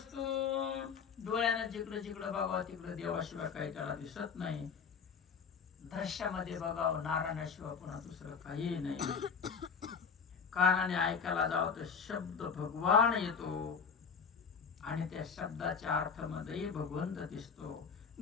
डोळ्यानं जिकडं जिकडं बघावं तिकडं देवाशिवाय काही त्याला दिसत नाही. दृश्यामध्ये बघावं नारायणाशिवाय पुन्हा दुसरं काही नाही. कानाने ऐकायला जावं तर शब्द भगवान येतो आणि त्या शब्दाच्या अर्थामध्ये भगवंत दिसतो.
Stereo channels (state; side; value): quieter; right; 6.1 dB